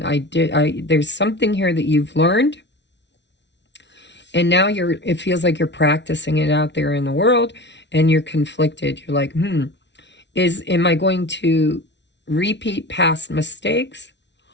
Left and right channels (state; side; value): late; right; 0.51 ms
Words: There's something here that you've learned, and now it feels like you're practicing it out there in the world, and you're conflicted. You're like, am I going to repeat past mistakes,